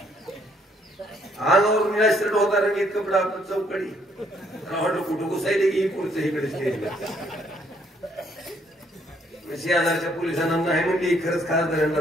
अंगावर निराश्रट होता रंगीत कपडा आपण चौकडी वाटलं कुठं घुसायले की पुढचं इकडे स्टेजला. शेजारच्या पोलिसांना नाही म्हणली खरंच खासदारांना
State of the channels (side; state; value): both; normal; correlation 0.68